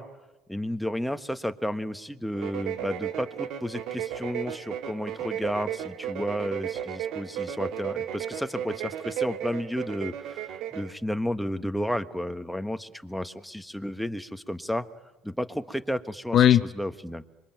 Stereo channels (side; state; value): both; normal; correlation 0.74